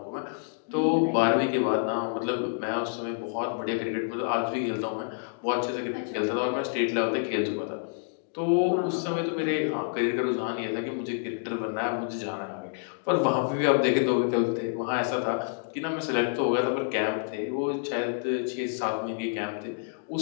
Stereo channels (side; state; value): right; silent; digital silence